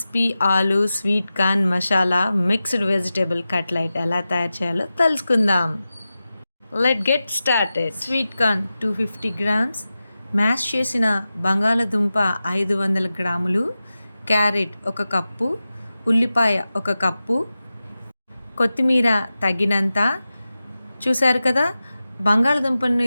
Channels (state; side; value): inverted; both; correlation -0.94